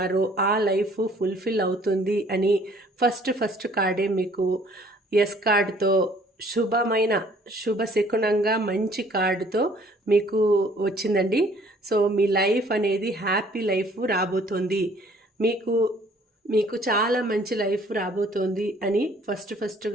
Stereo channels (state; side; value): normal; both; correlation 0.58